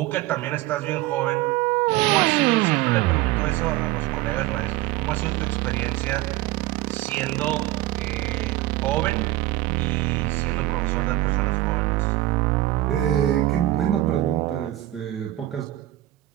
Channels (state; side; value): quieter; left; 16.1 dB